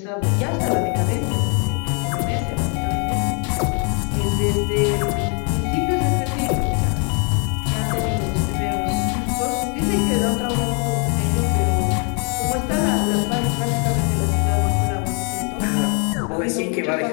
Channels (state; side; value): quieter; right; 36.0 dB